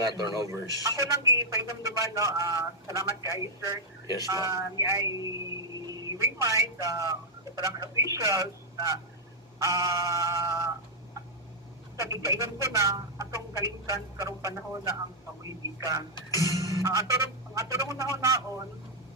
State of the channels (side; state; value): both; normal; correlation -0.04